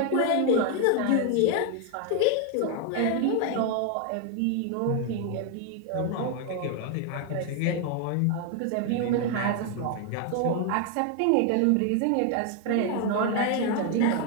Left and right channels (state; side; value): different; both; correlation 0.01